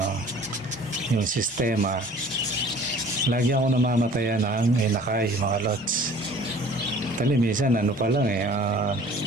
sistema. Lagi ako namamatayan ng inakay mga lods. Minsan pa lang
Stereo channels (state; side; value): normal; both; correlation 0.49